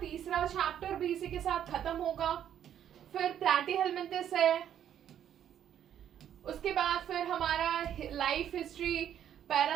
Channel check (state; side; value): quieter; left; 10.0 dB